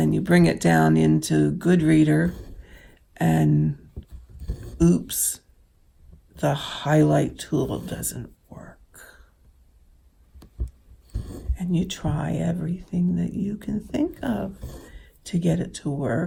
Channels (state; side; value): identical; both; correlation 1.00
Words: you bring it down into Goodreader, and oops, the highlight tool doesn't work. And you try everything that you can think of to get it to